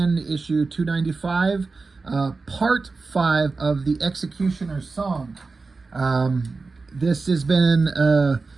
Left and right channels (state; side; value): quieter; left; 4.0 dB